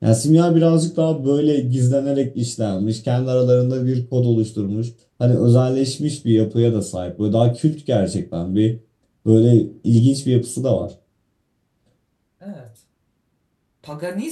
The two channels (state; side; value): identical; both; correlation 1.00